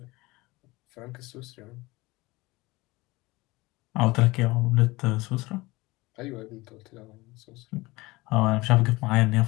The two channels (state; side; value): quieter; right; 21.6 dB